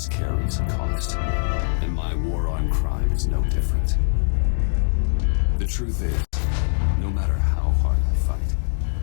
carries a cost, and my war on crime is no different. The truth is, no matter how hard I fight,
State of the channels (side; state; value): right; silent; digital silence